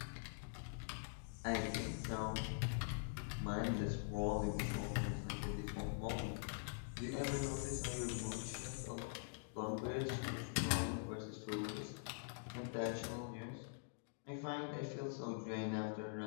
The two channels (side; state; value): right; silent; digital silence